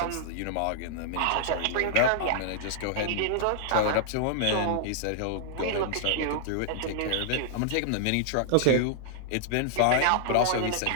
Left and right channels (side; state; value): both; different; correlation -0.01